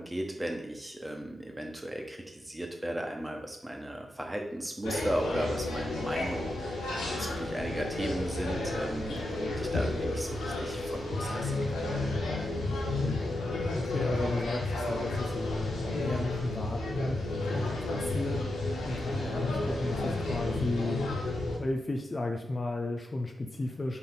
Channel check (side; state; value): both; normal; correlation 0.87